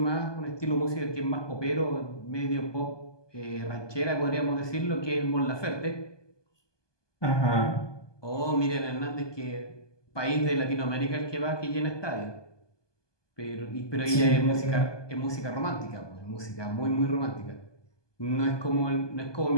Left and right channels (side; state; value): right; late; 1.2 ms